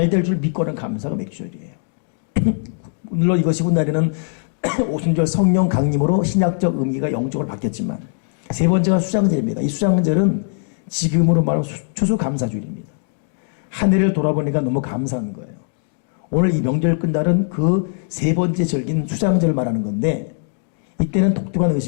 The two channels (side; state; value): right; silent; 66 dB below the other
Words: 될 줄 믿고는 감사가 맥주절이에요. 물론 이것이 훗날에는 오순절 성령 강림으로 신약적 의미가 영적으로 바뀌었지만 세 번째가 수장절입니다. 이 수장절은 지금으로 말하면 추수감사주일입니다. 한 해를 돌아보니까 너무 감사한 거예요. 오늘 이 명절 끝날은 그 세 번째 절기는 수장절을 말하는 건데 이때는 독특한